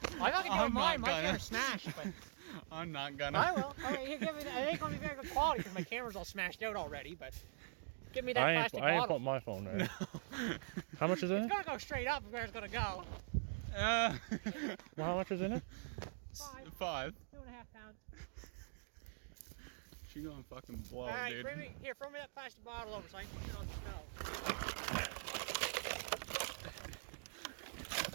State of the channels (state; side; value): silent; left; digital silence